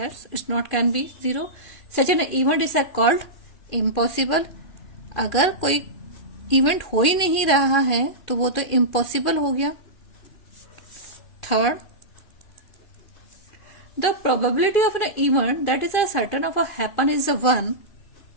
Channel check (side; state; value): right; late; 2.4 ms